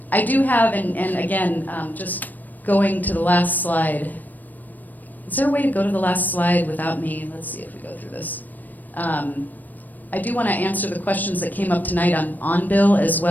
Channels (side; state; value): right; late; 0.086 ms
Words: I do have, and again, just going to the last slide. Is there a way to go to the last slide without me? Let's see if we go through this. I do want to answer the questions that came up tonight on bill, as